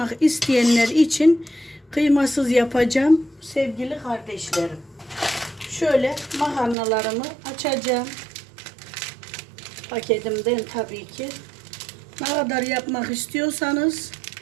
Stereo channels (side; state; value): left; drops out; at 6.8 s